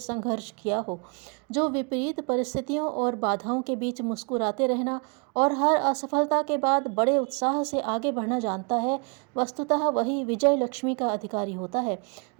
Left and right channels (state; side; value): quieter; left; 36.0 dB